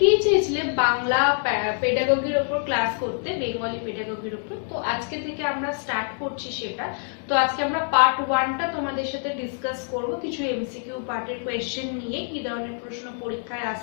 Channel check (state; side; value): silent; right; 57 dB below the other